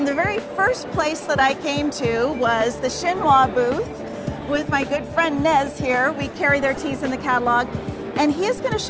the very first place that I came to was the Shinwa booth with my good friend Nez here. We carry their teas in the catalog, and he is going to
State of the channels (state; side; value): identical; both; correlation 1.00